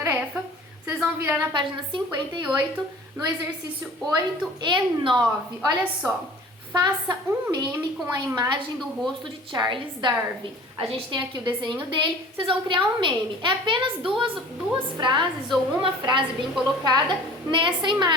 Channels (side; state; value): both; normal; correlation 0.45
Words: vocês vão virar na página 58, no exercício 8 e 9. Olha só, faça um meme com a imagem do rosto de Charles Darwin. A gente tem aqui o desenho dele, vocês vão criar um meme. É apenas duas frases ou uma frase bem colocada nessa